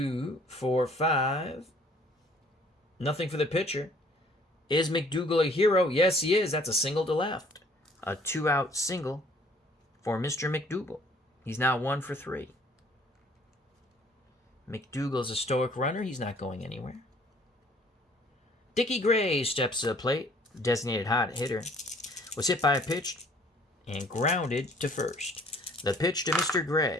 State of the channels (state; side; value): normal; both; correlation 0.57